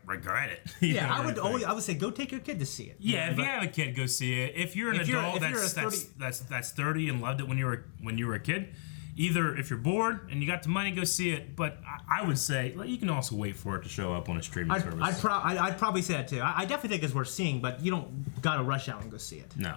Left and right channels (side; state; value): right; silent; digital silence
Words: regret it. Yeah, I would say go take your kid to see it. Yeah, if you have a kid, go see it. If you're an adult that's 30 and loved it when you were a kid. Either if you're bored and you got the money, go see it. But I would say you can also wait for it to show up on a streaming service. I'd probably say that too. I definitely think it's worth seeing, but you don't gotta rush out and go see it. No.